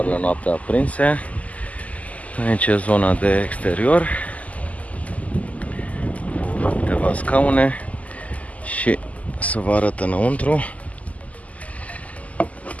noaptea aprinse. Aici e zona de exterior, cu câteva scaune, și să vă arăt înăuntru.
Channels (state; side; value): late; right; 0.072 ms